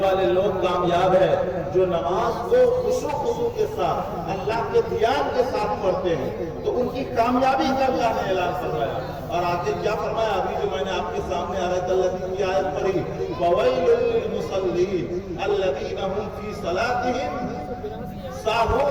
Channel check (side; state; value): both; identical; correlation 1.00